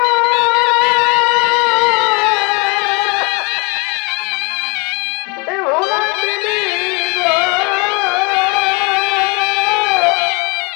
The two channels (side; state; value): right; quieter; 30.1 dB